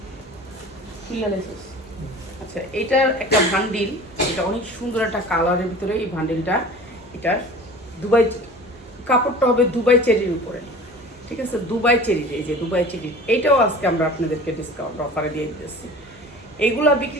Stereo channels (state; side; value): normal; both; correlation 0.40